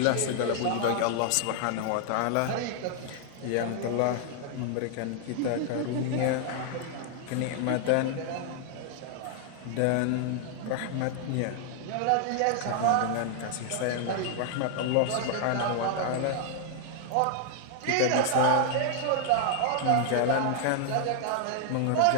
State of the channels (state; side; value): different; both; correlation 0.00